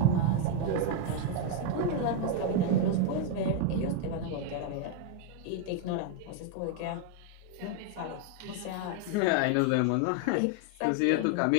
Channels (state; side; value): different; both; correlation 0.01